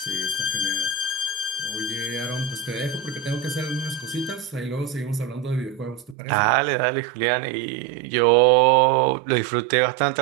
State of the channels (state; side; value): drops out; left; at 6.2 s